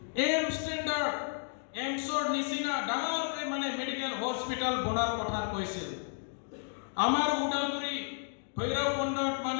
এম ষ্টেণ্ডাৰ্ড এমছৰ নিচিনা ডাঙৰকৈ মানে মেডিকেল হস্পিটাল বনাৰ কথা কৈছিল আমাৰ উদালগুৰি ভৈৰৱকুণ্ডত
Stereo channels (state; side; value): silent; right; 56 dB below the other